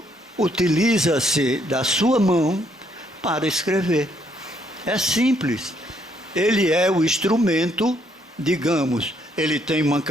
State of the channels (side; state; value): both; normal; correlation 0.71